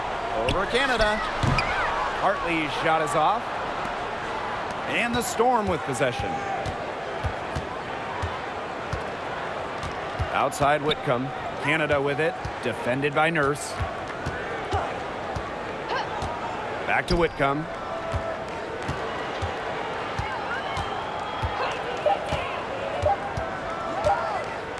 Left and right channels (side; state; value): both; identical; correlation 1.00